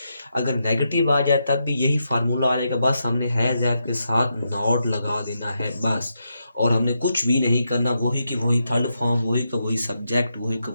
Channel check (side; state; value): both; inverted; correlation -0.83